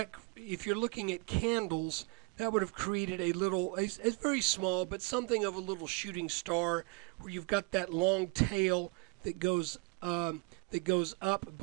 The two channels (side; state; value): left; quieter; 30.4 dB